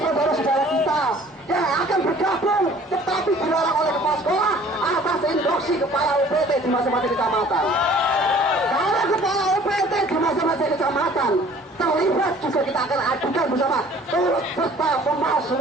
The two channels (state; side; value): normal; both; correlation 0.52